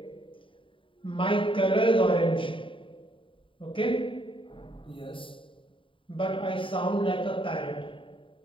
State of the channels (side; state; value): right; late; 0.25 ms